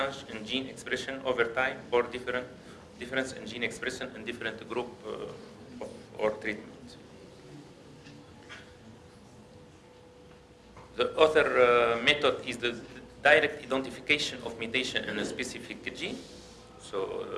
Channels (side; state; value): both; identical; correlation 1.00